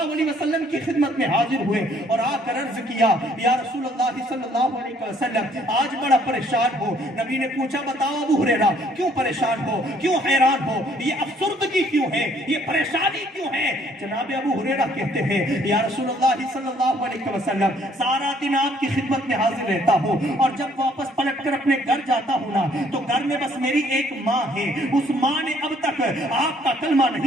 علیہ وسلم کی خدمت میں حاضر ہوئے اور آ کر عرض کیا, یا رسول اللہ صلی اللہ علیہ وسلم, آج بڑا پریشان ہو. نبی نے پوچھا, بتاؤ ابو ہریرہ, کیوں پریشان ہو, کیوں حیران ہو, یہ افسردگی کیوں ہے, یہ پریشانی کیوں ہے؟ جناب ابو ہریرہ کہتے ہیں, یا رسول اللہ صلی اللہ علیہ وسلم, سارا دن آپ کی خدمت میں حاضر رہتا ہوں اور جب واپس پلٹ کر اپنے گھر جاتا ہوں نا تو گھر میں بس میری ایک ماں ہے. اس ماں نے اب تک آپ کا کلمہ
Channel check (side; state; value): both; normal; correlation 0.63